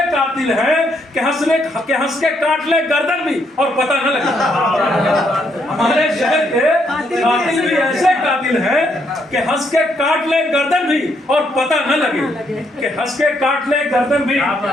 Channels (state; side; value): normal; both; correlation 0.74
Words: कातिल हैं कि हंस के काट ले गर्दन भी और पता न लगे। हमारे शहर के कातिल भी ऐसे कातिल हैं कि हंस के काट ले गर्दन भी और पता न लगे। कि हंस के काट ले गर्दन भी और